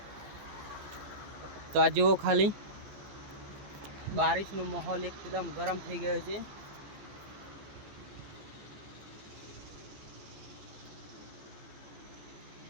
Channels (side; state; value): left; late; 15 ms